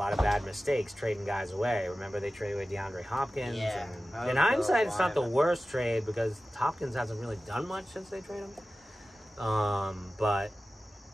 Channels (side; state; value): both; normal; correlation 0.95